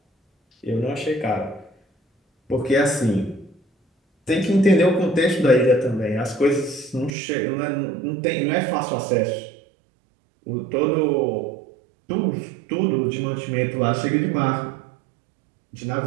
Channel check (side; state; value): left; drops out; at 7.1 s